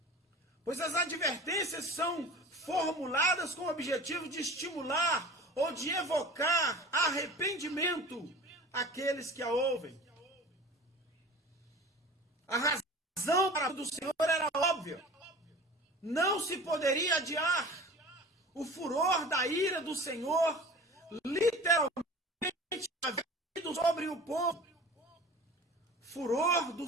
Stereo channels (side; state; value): both; normal; correlation 0.39